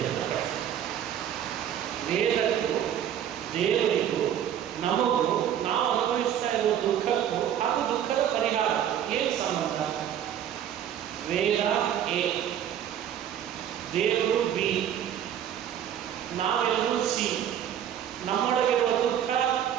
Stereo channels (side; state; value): left; quieter; 10.0 dB